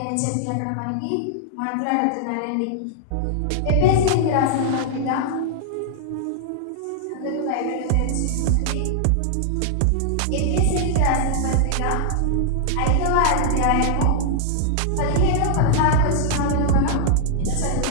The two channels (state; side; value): different; both; correlation -0.01